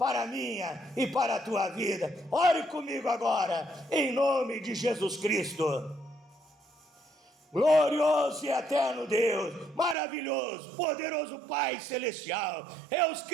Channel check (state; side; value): drops out; left; at 10.0 s